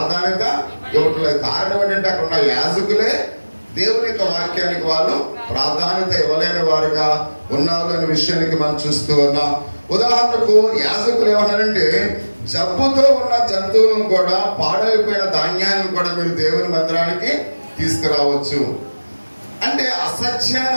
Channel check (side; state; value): both; inverted; correlation -1.00